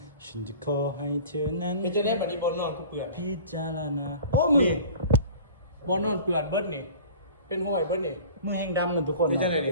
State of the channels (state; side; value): inverted; both; correlation -0.42